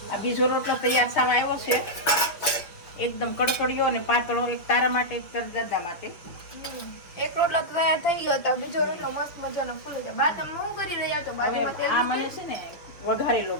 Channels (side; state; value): right; late; 6.1 ms